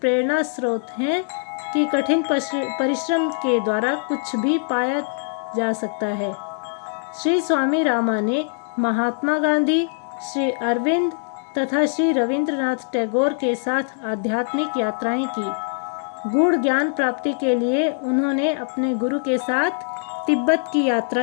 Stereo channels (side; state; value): right; silent; digital silence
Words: स्रोत हैं कि कठिन परिश्रम के द्वारा कुछ भी पाया जा सकता है। श्री स्वामी रामा ने महात्मा गांधी, श्री अरविंद तथा श्री रविंद्रनाथ टैगोर के साथ आध्यात्मिक यात्राएं की। गूढ़ ज्ञान प्राप्ति के लिए उन्होंने अपने गुरु के साथ तिब्बत की